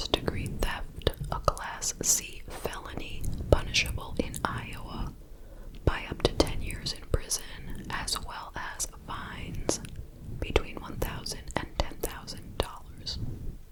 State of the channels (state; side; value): identical; both; correlation 1.00